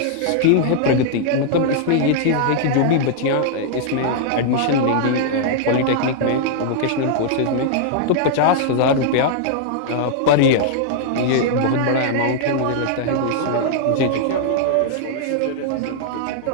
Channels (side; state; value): both; different; correlation -0.01